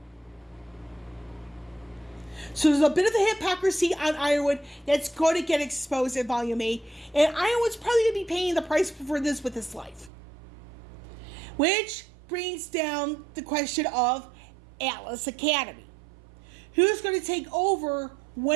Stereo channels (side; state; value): left; drops out; at 10.1 s